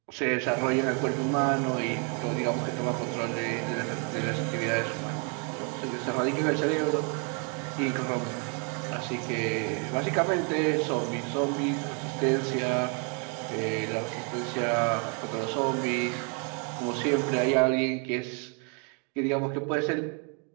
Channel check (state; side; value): quieter; left; 36.8 dB